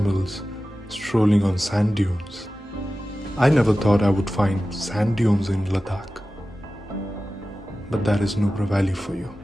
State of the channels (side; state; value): both; normal; correlation 0.95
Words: strolling on sand dunes. I never thought I would find sand dunes in Ladakh, but that is Nubra Valley for you.